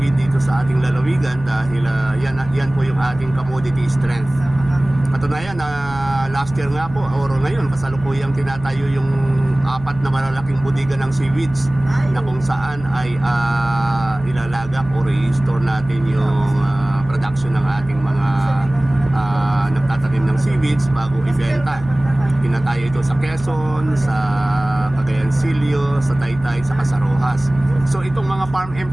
dito sa ating lalawigan dahil yan po yung ating commodity strength. Katunayan na last year nga po or ngayon kasalukuyang tinatayo yung 4 na malalaking budiga ng seaweeds na kung saan ay ilalagak o i-store natin yung production ng ating mga nagtatanim ng seaweeds bago ibenta. Tinatayo ito sa Quezon, sa Cagayan Silio, sa Taytay, sa Casarojas. So itong mga farm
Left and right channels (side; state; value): right; noise; hum, 15 dB below the sound